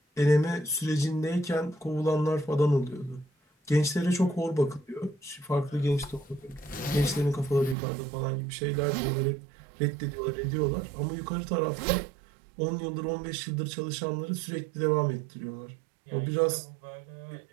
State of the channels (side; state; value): left; drops out; at 7.8 s